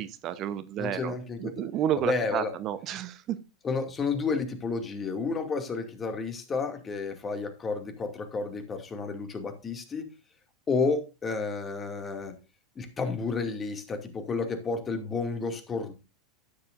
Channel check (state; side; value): normal; both; correlation 0.50